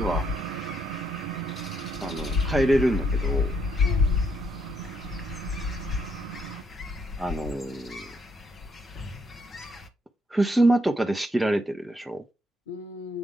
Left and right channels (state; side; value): normal; both; correlation 0.74